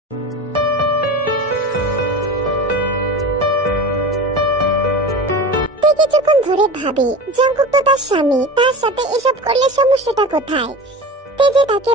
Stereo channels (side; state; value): both; normal; correlation 0.31